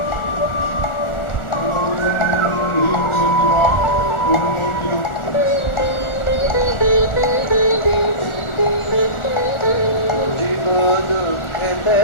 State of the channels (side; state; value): right; late; 1.4 ms